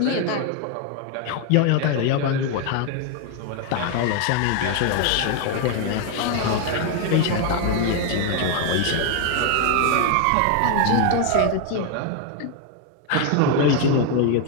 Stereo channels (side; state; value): both; different; correlation 0.01